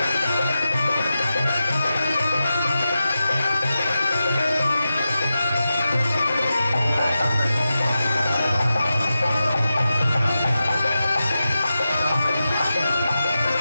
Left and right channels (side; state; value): both; inverted; correlation -0.91